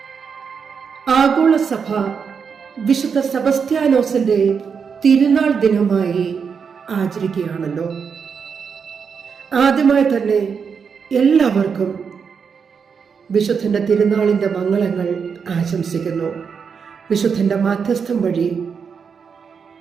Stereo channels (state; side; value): quieter; left; 6.2 dB